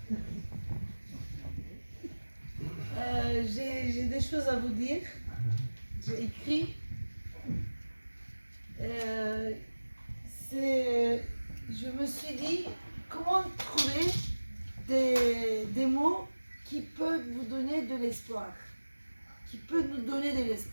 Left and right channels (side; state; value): both; inverted; correlation -1.00